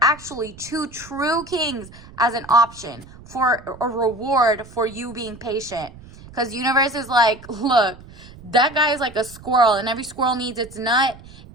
actually 2 true kings as an option for a reward for you being patient. Because universe is like, look, that guy is like a squirrel and every squirrel needs its nut.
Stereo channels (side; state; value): right; noise; rumble, 20 dB below the sound